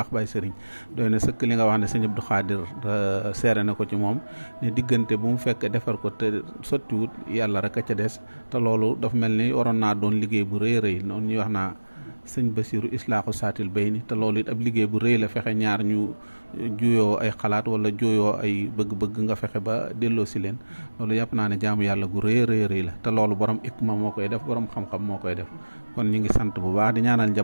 Baye Serigne doy na sëkk li nga wax ne sëñ Abdou Khadir seere na ko ci moom ne diggante bu mu fekk defar ko te sottiwut yàlla rek a ca des te loolu dafa mel ni waroon naa doon liggéey bu rëy rëy noonu ñuy wax naa sëñ Basiru islaaxu saatil bay ni te loolu it ab liggéey bu rëy la fexe ñaar ñu juyoo ay xalaat wala juyoo ay bëgg-bëgg nga fexe ba delloo si leen loolu yàpp naa ne jaamu yàlla gu rëy rëy la te loolu borom ikma moo koy def borom xam-xam moo koy def kon ñu ngi sant bu baax di ñaanal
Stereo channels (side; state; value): both; inverted; correlation -1.00